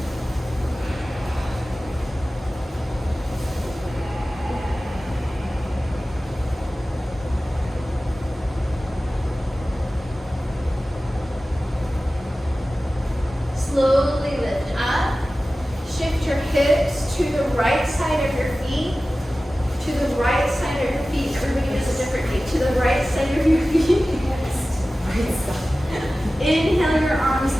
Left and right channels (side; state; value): both; normal; correlation 0.96